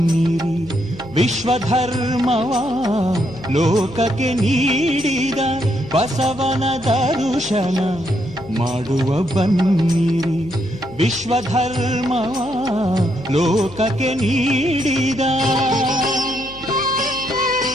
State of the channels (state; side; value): noise; left; hum, 19 dB below the sound